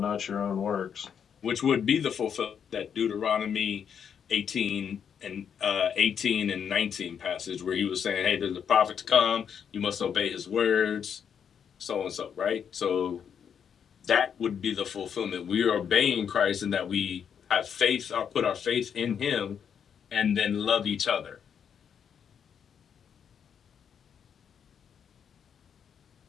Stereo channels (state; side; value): quieter; right; 7.7 dB